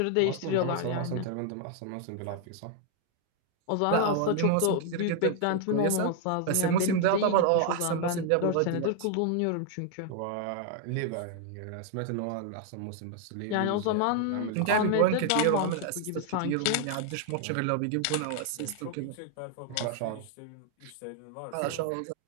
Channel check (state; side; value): different; both; correlation 0.00